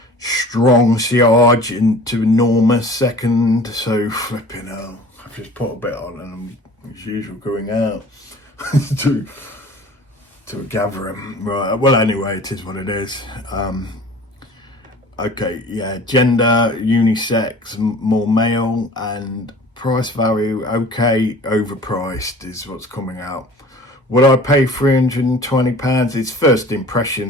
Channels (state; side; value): normal; both; correlation 0.44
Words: Strong siage into enormous second. So flipping hell. I've just put a bit on and I'm as usual going out to a gathering. Right, well anyway, it is what it is. Okay, yeah, gender, unisex, more male, and price value, okay, overpriced is what's coming out. Would I pay £320? It's first